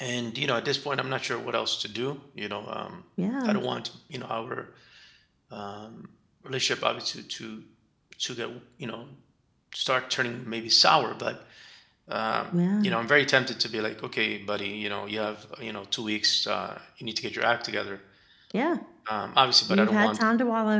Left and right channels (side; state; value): both; identical; correlation 1.00